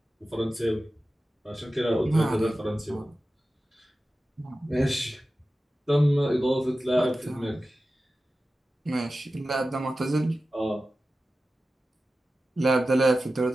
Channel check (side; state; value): both; normal; correlation 0.94